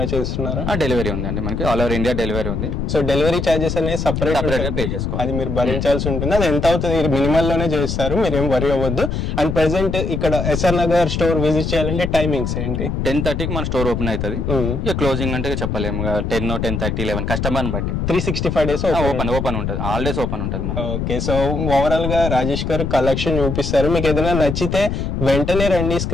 చేస్తున్నారా? డెలివరీ ఉంది అండి, మనకి ఆల్ ఓవర్ ఇండియా డెలివరీ ఉంది. సో డెలివరీ చార్జెస్ అనేది సపరేట్ పే చేసుకోవాలి, అది మీరు భరించాల్సి ఉంటుంది. అది ఎంత అవుతుంది? మినిమల్ లోనే చేస్తారు, మీరు ఏం వరి అవ్వద్దు. అండ్ ప్రెసెంట్ ఇక్కడ ఎస్ఆర్ నగర్ స్టోర్ విజిట్ చేయాలంటే టైమింగ్స్ ఏంటి? 10:30కి మన స్టోర్ ఓపెన్ అవుతుంది. ఇక క్లోజింగ్ అంటే చెప్పలేము, 10, 10:30, 11 కస్టమర్ బట్టి 365 days ఓపెన్ ఉంటుంది. ఆల్ డేస్ ఓపెన్ ఉంటుంది. ఓకే. సో ఓవరాల్ గా రాజేష్ గారు కలెక్షన్ చూపిస్తారు. మీకు ఏదైనా నచ్చితే వెంటనే రండి,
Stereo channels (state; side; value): noise; left; rumble, 2 dB below the sound